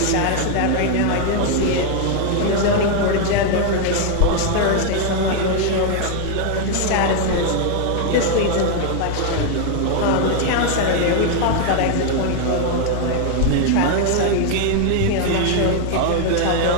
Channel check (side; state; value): both; different; correlation 0.00